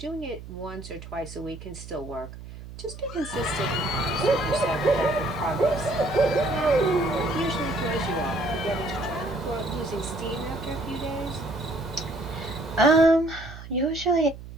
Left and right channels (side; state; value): right; noise; hum, 13 dB below the sound